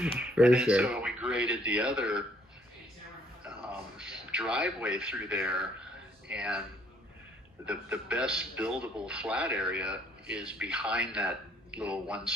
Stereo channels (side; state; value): both; normal; correlation 0.64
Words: For sure. Sure. So we graded the other driveway through there, and the best buildable flat area is behind that little